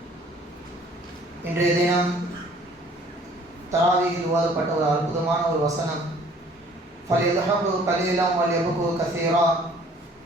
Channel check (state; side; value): normal; both; correlation 0.55